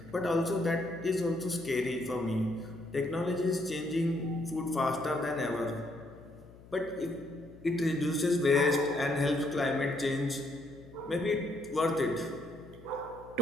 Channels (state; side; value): noise; left; hum, 21 dB below the sound